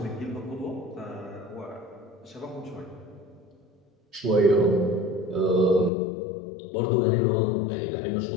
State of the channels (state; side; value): drops out; right; at 5.9 s